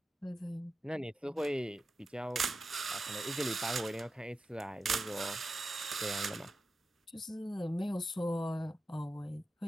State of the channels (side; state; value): both; normal; correlation 0.91